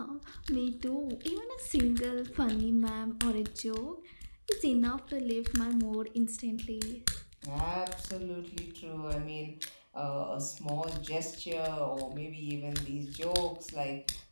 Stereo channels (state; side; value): inverted; both; correlation -1.00